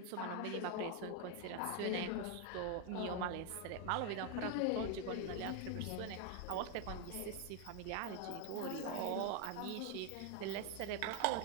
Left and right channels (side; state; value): both; different; correlation 0.01